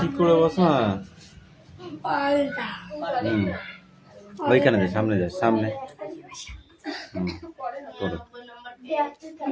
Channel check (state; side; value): identical; both; correlation 1.00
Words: ঠিক করে বসো। হ্যাঁ, হুম, ওইখানে যা, সামনে যা, সামনে। হুম, করো।